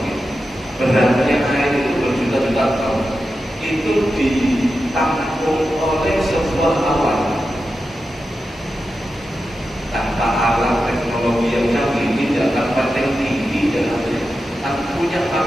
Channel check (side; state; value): both; normal; correlation 0.90